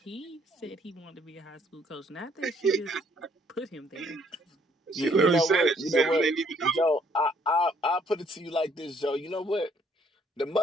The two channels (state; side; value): normal; both; correlation 0.65